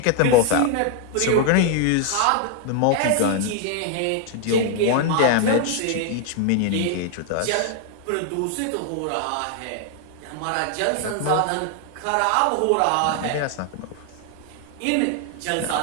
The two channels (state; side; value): different; both; correlation 0.00